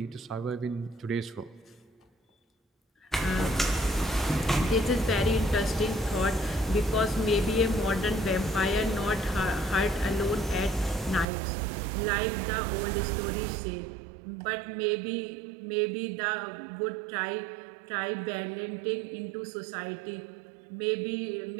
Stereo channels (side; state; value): left; drops out; at 11.2 s